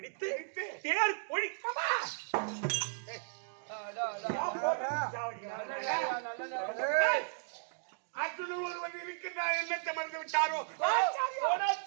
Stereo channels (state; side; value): silent; left; digital silence